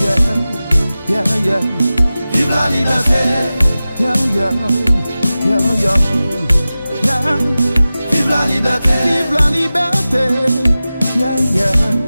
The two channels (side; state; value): both; inverted; correlation -0.96